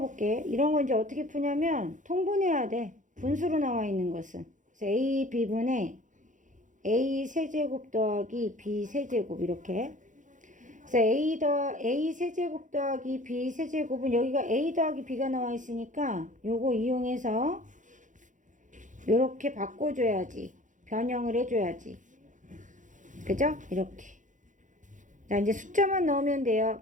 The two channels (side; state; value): left; late; 0.37 ms